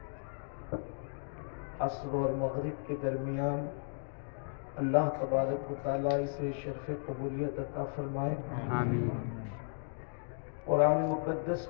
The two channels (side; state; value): right; silent; digital silence